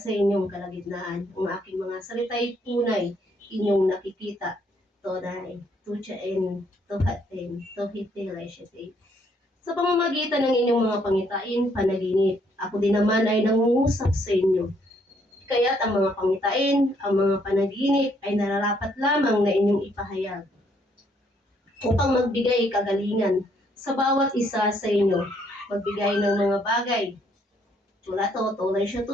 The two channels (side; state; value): both; normal; correlation 0.69